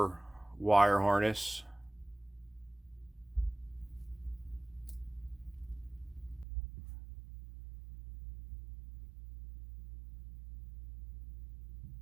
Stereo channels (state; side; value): drops out; left; at 6.5 s